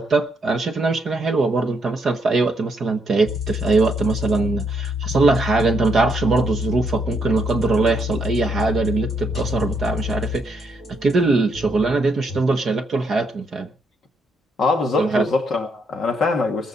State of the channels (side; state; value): both; normal; correlation 0.75